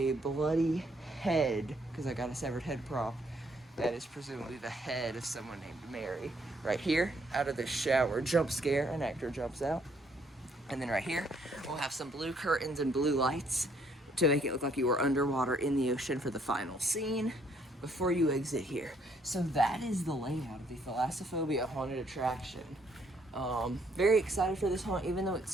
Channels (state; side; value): normal; both; correlation 0.68